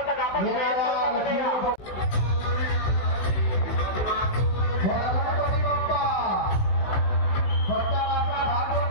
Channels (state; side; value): late; right; 16 ms